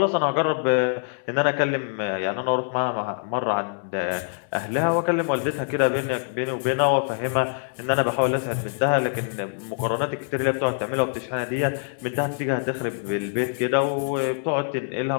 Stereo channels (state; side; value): silent; right; 62 dB below the other